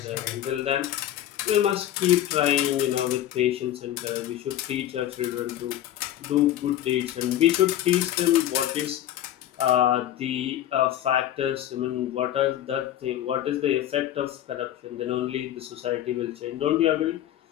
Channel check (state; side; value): quieter; right; 12.2 dB